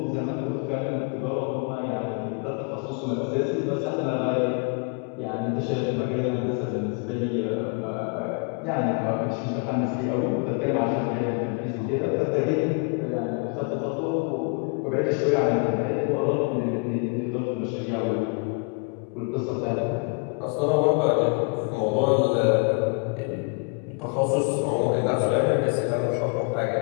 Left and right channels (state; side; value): quieter; right; 36.0 dB